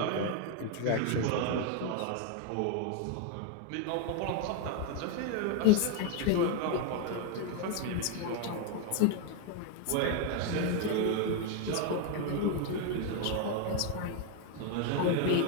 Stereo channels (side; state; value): both; different; correlation 0.01